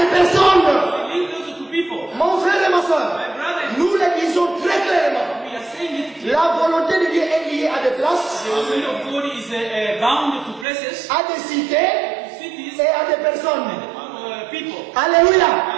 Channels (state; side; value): drops out; left; at 10.7 s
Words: des personnes. linked also to people. Mon frère et ma soeur, My brother, nous le disons très clairement. we are saying it clearly. La volonté de Dieu est liée à des places, The will of God is bound to places, à des cités cities, et à des personnes. people. Alléluia.